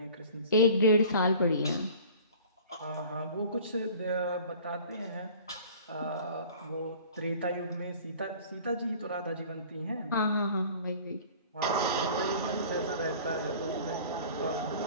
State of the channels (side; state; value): both; inverted; correlation -0.46